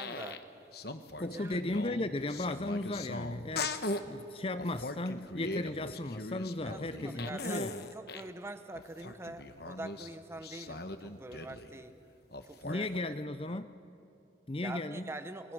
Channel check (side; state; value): both; normal; correlation 0.50